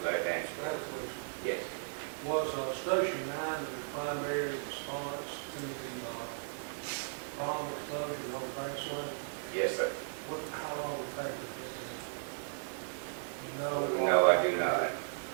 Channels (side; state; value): left; silent; 54 dB below the other